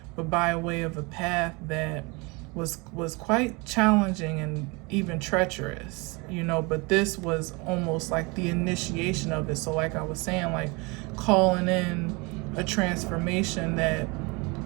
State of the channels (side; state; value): left; quieter; 27.8 dB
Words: but by way of a path that was quite challenging and even treacherous, you know, but this was almost like the initiation of it. So like I was saying, like calling in a transformation that